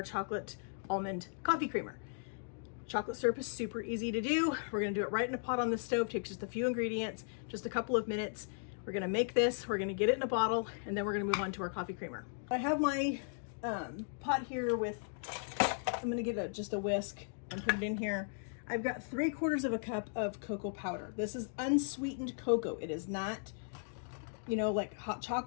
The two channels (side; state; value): right; silent; digital silence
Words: chocolate almond coffee creamer. Chocolate syrup is super easy to do. We're gonna do it right in a pot on the stove. Takes just a few ingredients, just a couple of minutes. We're gonna make this, we're gonna get it in a bottle, and then we're gonna move on to our coffee creamer. I have my pot here with, I'm gonna get just a whisk and put it in here. I've got 3/4 of a cup of cocoa powder. This is unsweetened cocoa. It is not, you know, like hot